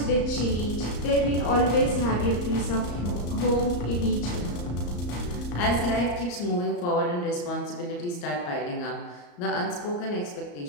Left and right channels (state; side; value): late; right; 34 ms